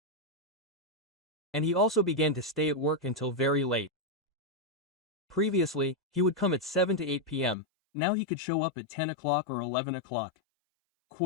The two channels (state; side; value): drops out; right; at 7.6 s